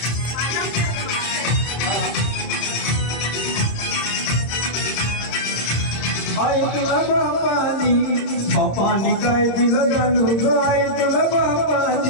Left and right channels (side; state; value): right; late; 26 ms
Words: आई तुला बापानी काय दिलं जाणू ग आई तुला